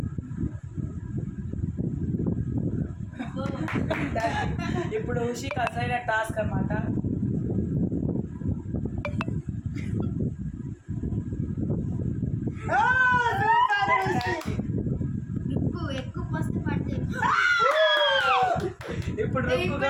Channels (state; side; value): identical; both; correlation 1.00